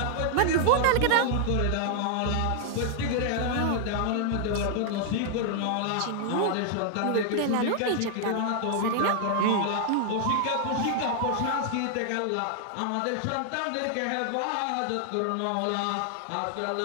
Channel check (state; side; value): different; both; correlation 0.00